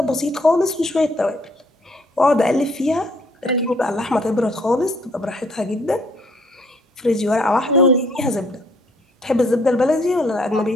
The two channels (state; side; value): normal; both; correlation 0.64